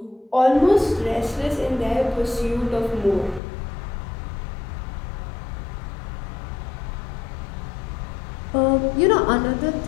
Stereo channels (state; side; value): drops out; right; at 3.4 s